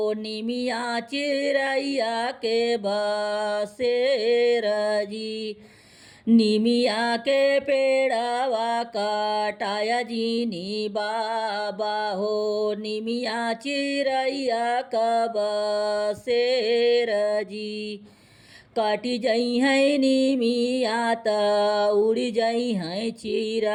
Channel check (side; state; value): both; identical; correlation 1.00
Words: निमिया चिरैया के बसेर जी। निमिया के पेड़ावा कटाया जीनी बाबा हो। निमिया चिरैया का बसेर जी। काटी जई है निमिया त उड़ी जई है